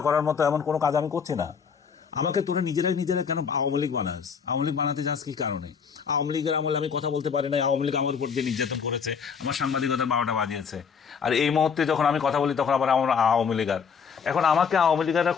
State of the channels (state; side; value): quieter; right; 6.4 dB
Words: করার মতো এমন কোনো কাজ আমি করছি না। আমাকে তুমি নিজেরাই কেন আওয়ামী লীগ বানাস? আওয়ামী লীগ বানাতে চাস কি কারণে? আওয়ামী লীগের আমলে আমি কথা বলতে পারি না, আওয়ামী লীগ আমার উপর দিয়ে নির্যাতন করেছে, আমার সাংবাদিকতা 12টা বাজিয়েছে। আর এই মুহূর্তে যখন আমি কথা বলি তখন আবার আমার আওয়ামী লীগার। এখন আমাকে আওয়ামী লীগাররা